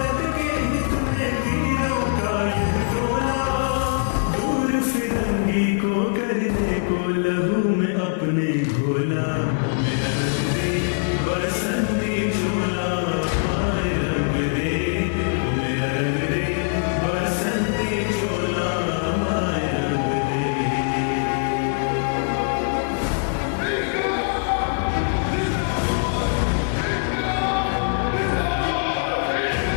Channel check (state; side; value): silent; right; 64 dB below the other